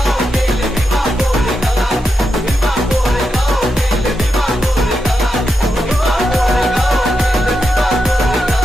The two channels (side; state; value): both; normal; correlation 0.86